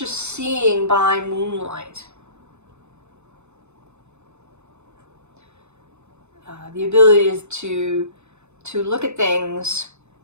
seeing by moonlight. The ability is to look at things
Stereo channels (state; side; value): late; left; 0.82 ms